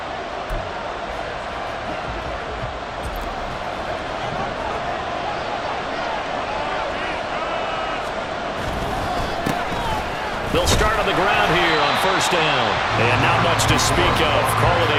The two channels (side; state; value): both; identical; correlation 1.00